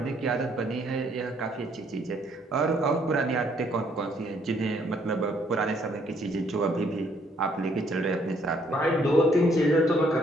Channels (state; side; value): normal; both; correlation 0.66